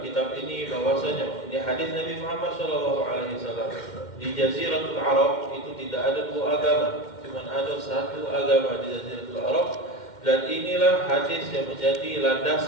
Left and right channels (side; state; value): right; late; 2.1 ms